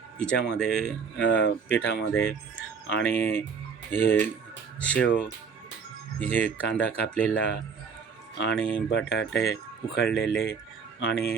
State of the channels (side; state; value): left; quieter; 5.9 dB